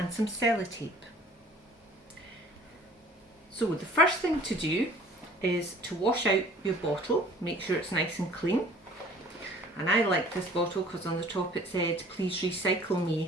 some sellotape. So the first thing to do is to wash out your bottle, make sure it's nice and clean. And I like this bottle because on the top it said, "Please recycle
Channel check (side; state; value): both; normal; correlation 0.51